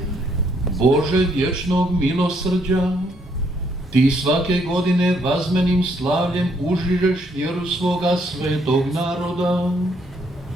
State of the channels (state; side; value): normal; both; correlation 0.70